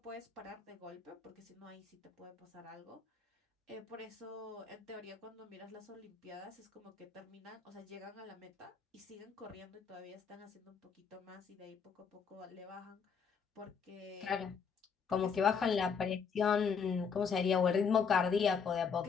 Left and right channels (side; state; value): right; quieter; 6.2 dB